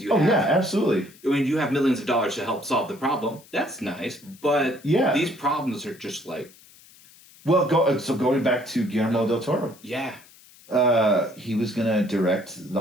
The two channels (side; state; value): left; noise; hiss, 25 dB below the sound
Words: you have. Oh yeah, absolutely. I mean, you have millions of dollars to help solve the problem. That's nice, but these problems are just Well, going back to Guillermo del Toro. Yeah. He was gonna direct